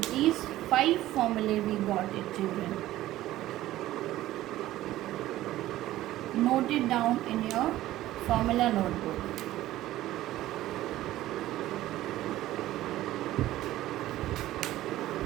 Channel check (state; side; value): quieter; left; 15.1 dB